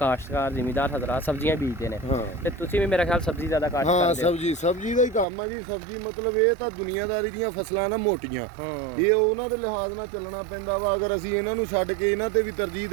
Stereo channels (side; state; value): left; drops out; at 5.2 s